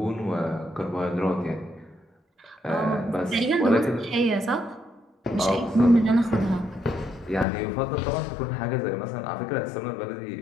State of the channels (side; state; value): right; drops out; at 7.5 s